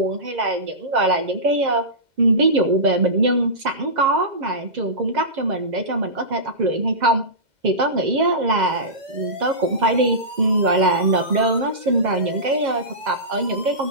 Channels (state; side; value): late; left; 2.0 ms